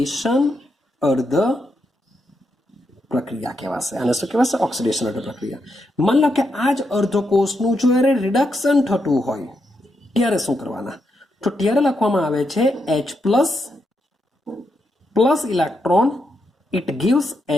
અર્ધ પ્રક્રિયા કહેવાશે. આને શું કહેવાશે? ઓક્સિડેશન અર્ધ પ્રક્રિયા. માન લો કે આ જ અર્ધકોષનું જો રિડક્શન થતું હોય ત્યારે શું કરવાના? તો ત્યારે લખવામાં આવે છે H+ electron, it gives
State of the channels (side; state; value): both; normal; correlation 0.82